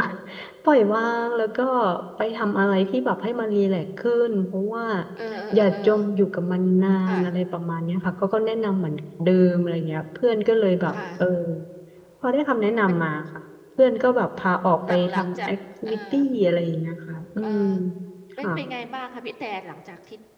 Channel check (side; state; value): both; identical; correlation 1.00